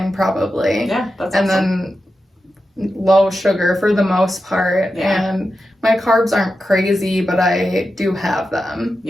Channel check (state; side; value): normal; both; correlation 0.90